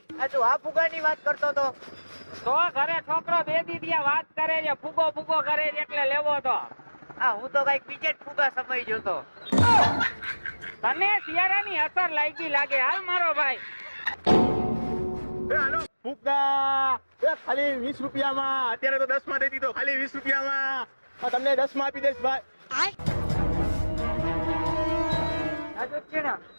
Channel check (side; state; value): both; inverted; correlation -1.00